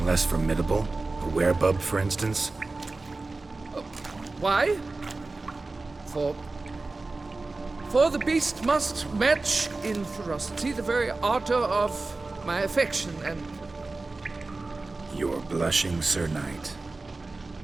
less formidable? A werebub, for instance? Why? For the beast must match in ferocity the very ardor of my affection, and... You're blushing, Sir Knight.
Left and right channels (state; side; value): quieter; left; 3.4 dB